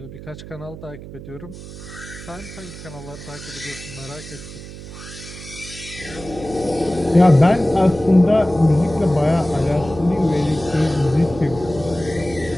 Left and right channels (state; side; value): noise; right; hum, 14 dB below the sound